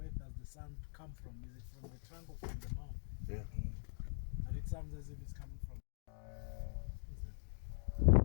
does the sound come from? Is it from the trunk or from the mouth? Yeah. But it sounds as if it's coming from.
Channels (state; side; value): silent; right; digital silence